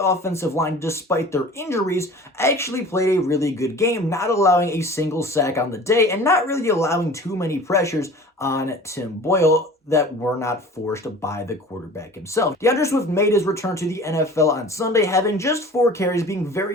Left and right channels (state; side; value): normal; both; correlation 0.42